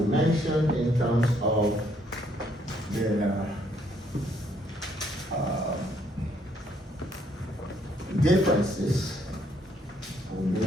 mentioned in terms of the differences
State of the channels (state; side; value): normal; both; correlation 0.69